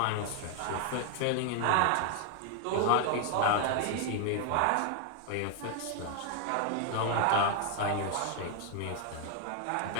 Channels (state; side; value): different; both; correlation 0.00